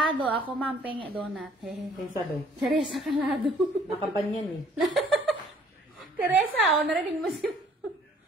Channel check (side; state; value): both; normal; correlation 0.58